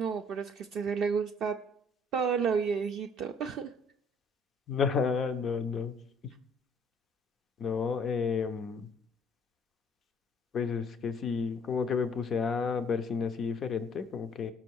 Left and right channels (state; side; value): normal; both; correlation 0.59